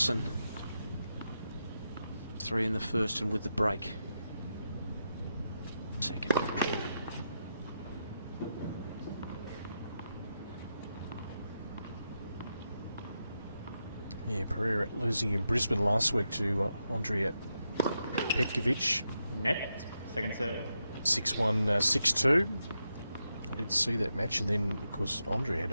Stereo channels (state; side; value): inverted; both; correlation -0.85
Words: 3 in the first and with the break. Second. Yeah, Pereira losing in Brisbane last week to Andrea Petkovic. Net. Second serve. 6-1, 6-2. I did see that match, and then, of course, Andrea had